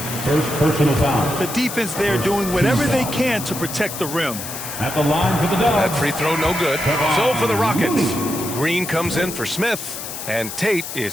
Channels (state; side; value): noise; left; hiss, 8 dB below the sound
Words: First personal foul. The defense there doing whatever they can to protect the rim. At the line for the Dogs. That free throw no good. So for the Rockets, Green comes in for Smith. And Tate